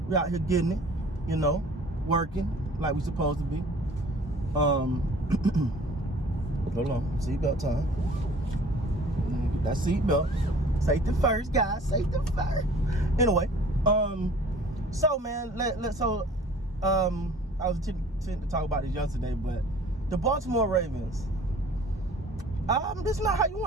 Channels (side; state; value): both; normal; correlation 0.50